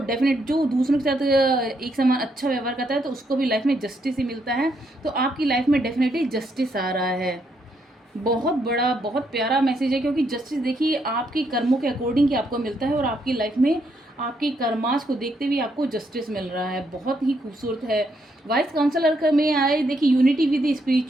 जो दूसरों के साथ एक समान अच्छा व्यवहार करता है, तो उसको भी लाइफ में जस्टिस ही मिलता है। तो आपकी लाइफ में डेफिनेटली जस्टिस आ रहा है। बहुत बड़ा, बहुत प्यारा मैसेज है, क्योंकि जस्टिस देखिए आपके कर्मों के अकॉर्डिंग ही आपको मिलता है, और आपकी लाइफ में आपके कर्मास को देखते हुए आपको जस्टिस मिल रहा है, बहुत ही खूबसूरत है। वाइस काउंसलर का में आए देखिए unity with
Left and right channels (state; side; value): normal; both; correlation 0.76